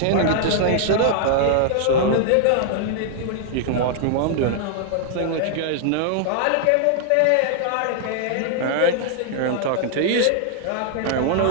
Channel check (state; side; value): different; both; correlation -0.01